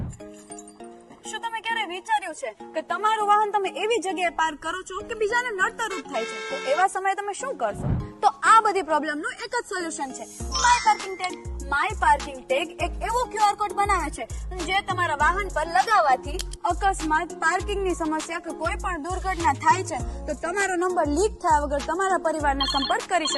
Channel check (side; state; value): both; identical; correlation 1.00